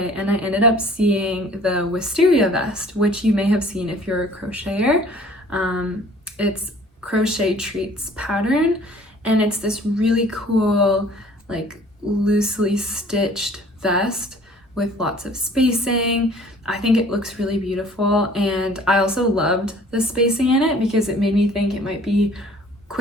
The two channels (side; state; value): both; normal; correlation 0.52